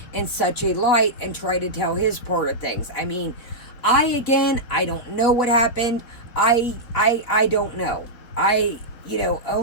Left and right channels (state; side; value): late; right; 4.3 ms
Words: in such a light, and try to tell his part of things? I mean, I don't know what happened. I don't know.